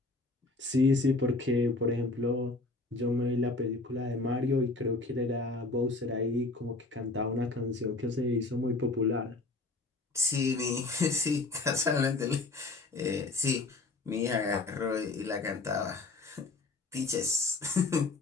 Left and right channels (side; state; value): right; quieter; 3.4 dB